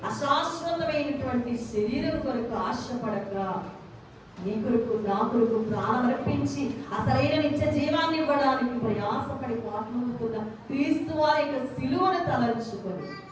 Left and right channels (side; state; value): both; identical; correlation 1.00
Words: అశాశ్వతమైనటువంటి శరీరం కొరకు ఆశపడక నీ కొరకు నా కొరకు ప్రాణం అర్పించి అసలైన నిత్య జీవాన్ని ఇవ్వడానికి ప్రయాసపడి పాటుతున్న క్రీస్తు వారి యొక్క సిలువను తలంచుకొని